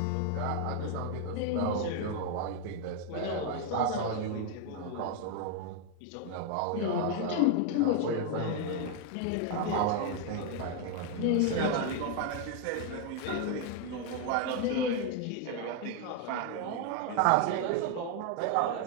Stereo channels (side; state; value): both; different; correlation 0.00